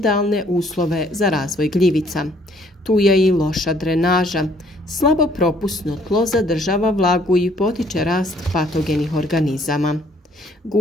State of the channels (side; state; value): both; normal; correlation 0.63